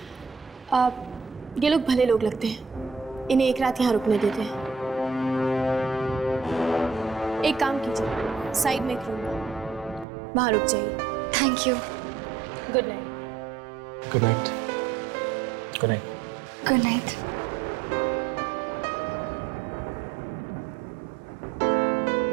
ये लोग भले लोग लगते हैं, इन्हें एक रात यहाँ रुकने देते हैं। एक काम कीजिए, साइड में एक रूम है, वहाँ रुक जाइए। Thank you. Good night. Good night. Good night. Good night.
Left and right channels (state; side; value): drops out; left; at 10.1 s